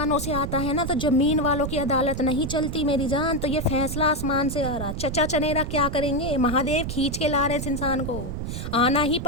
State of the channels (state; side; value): noise; right; rumble, 5 dB below the sound